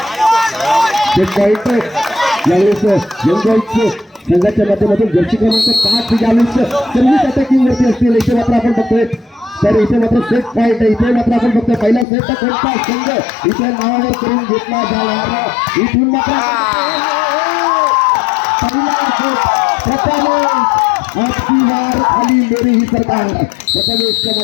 यावेळेस यंग संघाच्या माध्यमातून जर्सी क्रमांक 5 यावेळेस सर्व्हिस अटॅकिंग वरती असतील इथे मात्र आपण बघतोय तर इथे मात्र सेट पॉईंट आहे इथे मात्र आपण बघतोय पहिला सेट कोणता संघ इथे नावावर करून घेतला जाणार इथून मात्र खाली मेरी ही सरकार प्रथमेशच्या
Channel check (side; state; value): right; drops out; at 12.1 s